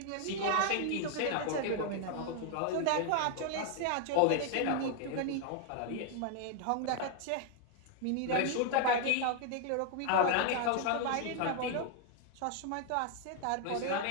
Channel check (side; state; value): both; different; correlation 0.00